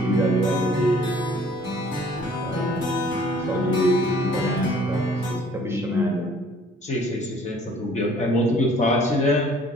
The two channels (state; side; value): normal; both; correlation 0.55